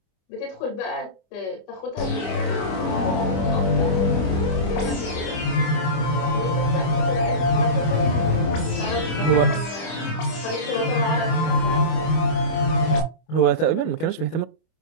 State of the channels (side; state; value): right; late; 25 ms